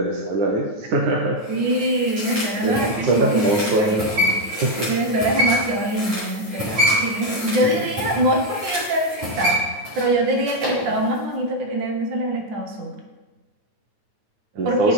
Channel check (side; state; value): left; late; 9.2 ms